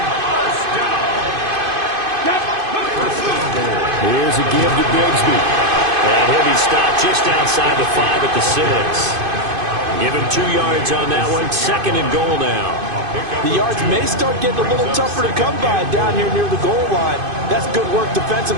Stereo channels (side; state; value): left; late; 2.5 ms